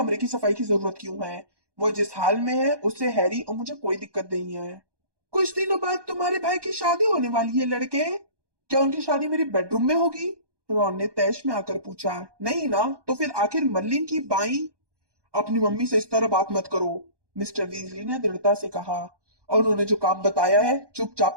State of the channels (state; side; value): late; left; 1.2 ms